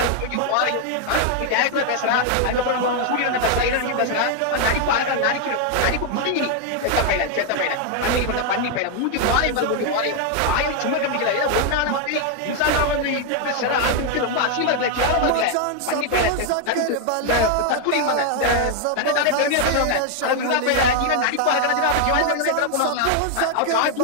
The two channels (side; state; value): both; different; correlation 0.00